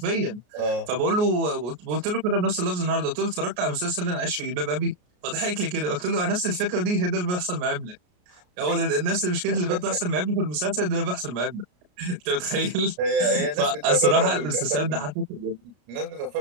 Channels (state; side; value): late; left; 33 ms